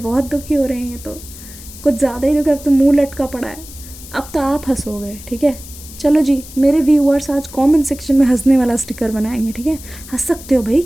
दुखी हो रहे हैं, ये तो कुछ ज़्यादा ही दुखी, अब तो मुंह लटका पड़ा है। अब तो आप हंसोगे, ठीक है। चलो जी, मेरे व्यूअर्स आज कमेंट सेक्शन में हंसने वाला स्टिकर बनाएंगे, ठीक है। हंस सकते हो भाई,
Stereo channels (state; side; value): noise; left; hiss, 16 dB below the sound